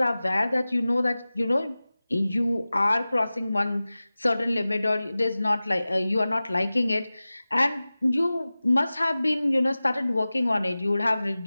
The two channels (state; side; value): inverted; both; correlation -0.97